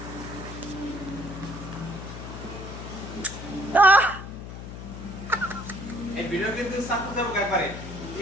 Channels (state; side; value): noise; left; hum, 10 dB below the sound